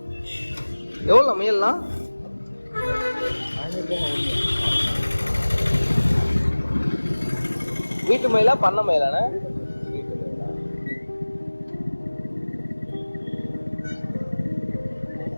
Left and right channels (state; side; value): inverted; both; correlation -1.00